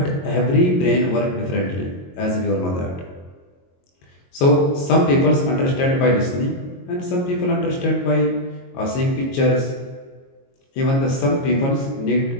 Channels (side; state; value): right; late; 22 ms